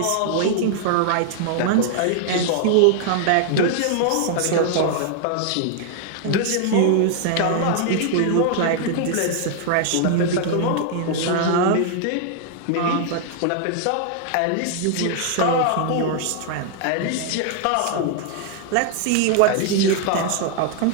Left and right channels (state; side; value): different; both; correlation 0.00